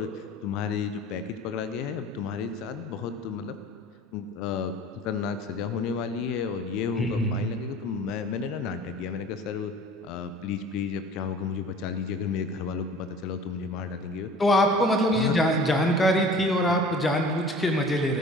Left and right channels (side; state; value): both; normal; correlation 0.44